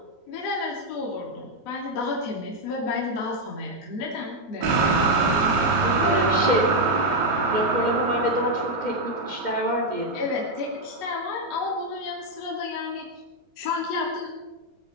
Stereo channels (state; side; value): normal; both; correlation 0.02